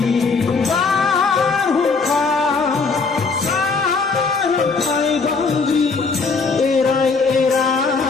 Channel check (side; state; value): right; quieter; 4.5 dB